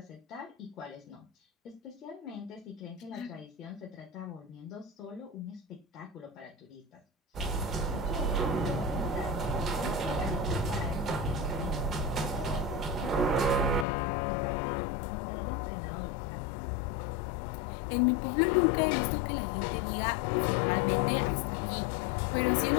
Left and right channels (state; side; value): drops out; right; at 13.9 s